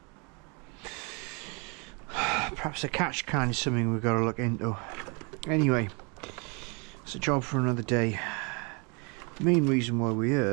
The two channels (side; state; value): left; quieter; 32.2 dB